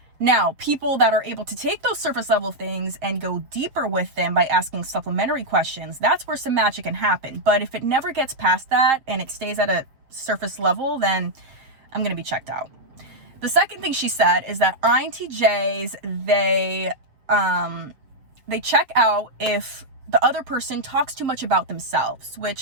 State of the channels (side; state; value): left; late; 7.3 ms